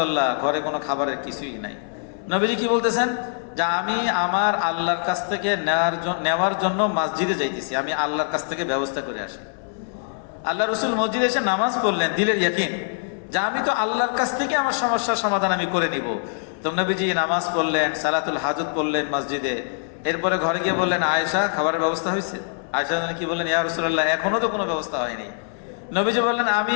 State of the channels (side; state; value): right; silent; 63 dB below the other